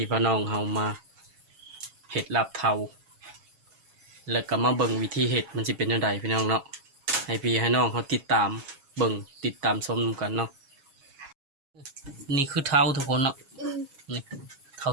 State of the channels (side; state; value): left; late; 7.3 ms